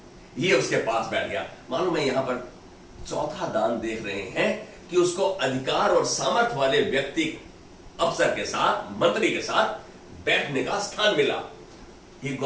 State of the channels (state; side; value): identical; both; correlation 1.00